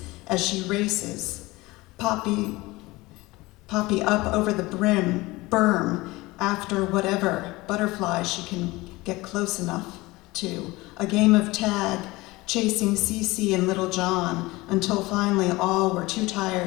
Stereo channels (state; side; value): quieter; right; 21.1 dB